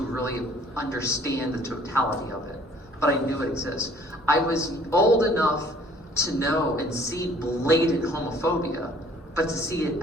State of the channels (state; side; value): normal; both; correlation 0.56